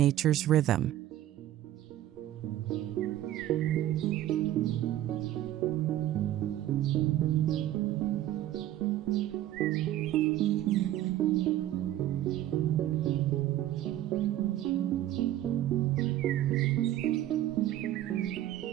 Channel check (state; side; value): quieter; left; 13.2 dB